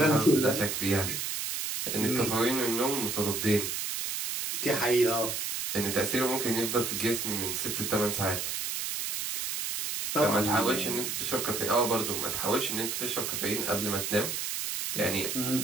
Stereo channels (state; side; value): noise; right; hiss, 2 dB below the sound